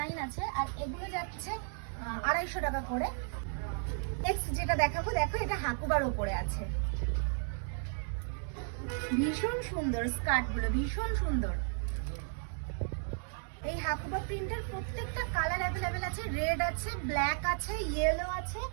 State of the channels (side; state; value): left; silent; 55 dB below the other